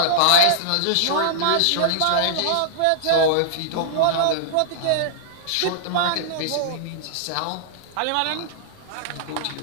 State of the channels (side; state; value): both; different; correlation -0.02